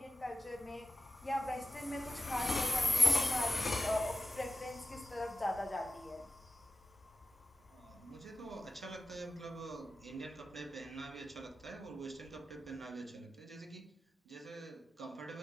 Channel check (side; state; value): both; normal; correlation 0.95